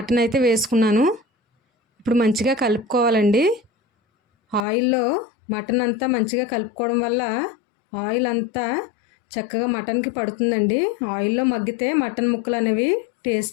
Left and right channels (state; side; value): drops out; right; at 4.7 s